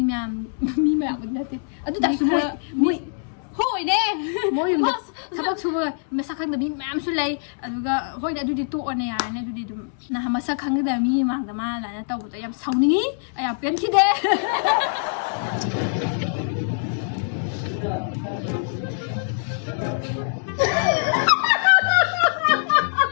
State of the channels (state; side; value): silent; right; 63 dB below the other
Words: nate adu da su moi hoi ne moi sabak suba masakhangda mi myam su lay aduga hoi adu di to one ya ne adu di dum na masakhangda mi mangda ma la na tawdo yam sauni aya pen khide